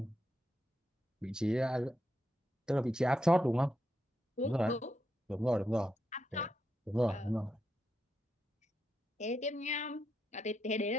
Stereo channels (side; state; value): both; normal; correlation 0.83